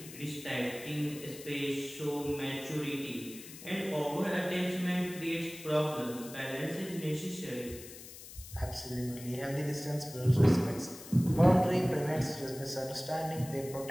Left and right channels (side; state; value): left; noise; hiss, 15 dB below the sound